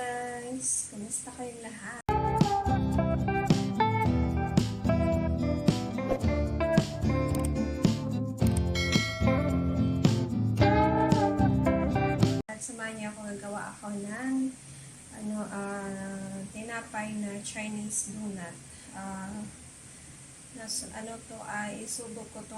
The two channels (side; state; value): both; identical; correlation 1.00